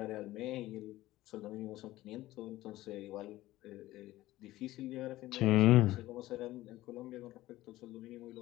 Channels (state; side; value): quieter; right; 16.4 dB